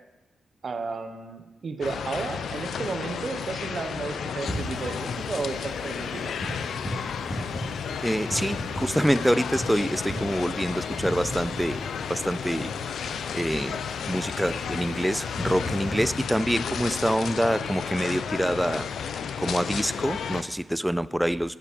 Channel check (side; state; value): both; normal; correlation 0.92